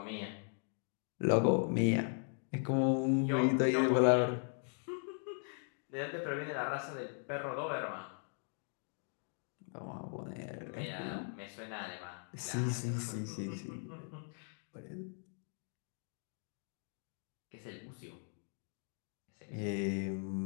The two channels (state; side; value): silent; right; 52 dB below the other